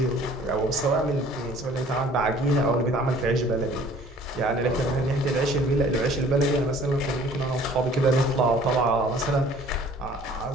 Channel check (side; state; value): both; normal; correlation 0.53